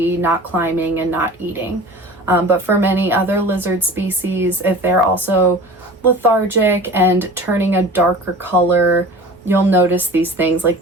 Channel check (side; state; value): both; normal; correlation 0.39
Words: not climbing, and not eating. But for many other lizard species, if they're also lethargic and turning a darker color, you'll notice these things like